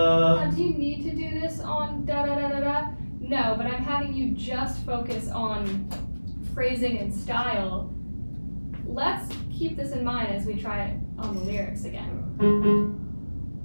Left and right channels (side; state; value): both; inverted; correlation -1.00